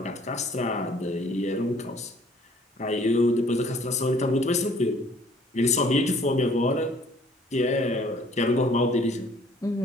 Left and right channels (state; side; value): normal; both; correlation 0.57